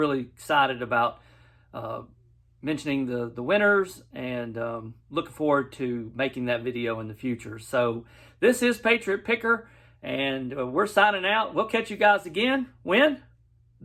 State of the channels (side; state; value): both; identical; correlation 1.00